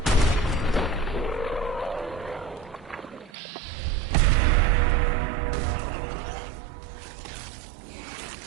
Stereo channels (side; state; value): left; drops out; at 3.3 s